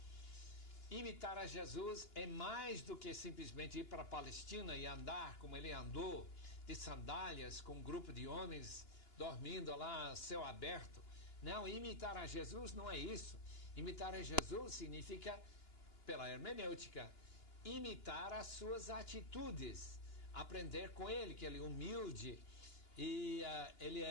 Imitar a Jesus é mais do que simplesmente ir para a Palestina e andar como ele andou, de sandálias, com um grupo de homens dormindo lá, céu aberto. Não, imitar a Jesus não é isso. Imitar a Jesus significa, pela hermenêutica, imitar as suas atitudes, aprender com ele, que ele é humilde e ele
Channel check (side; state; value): right; late; 2.9 ms